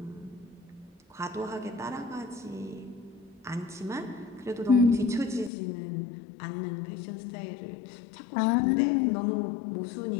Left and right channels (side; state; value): right; drops out; at 5.5 s